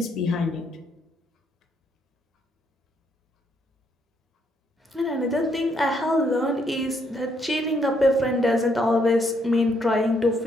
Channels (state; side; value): normal; both; correlation 0.72